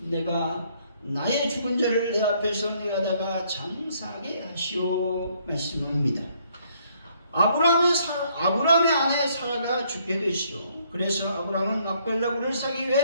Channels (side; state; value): both; inverted; correlation -0.67